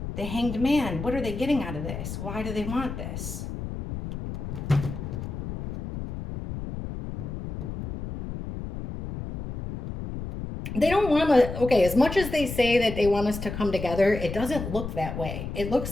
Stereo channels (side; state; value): left; noise; rumble, 7 dB below the sound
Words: The Hanged Man, what are they getting out of this? Why do they want this? They don't want to, okay, as much as they say that they want us to come together, it doesn't look that way. It